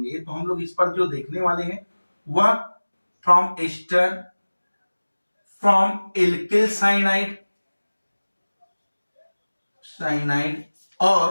तो हम लोग इस पर जो देखने वाले हैं वह from ester, from alkyl cyanide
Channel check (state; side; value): inverted; both; correlation -1.00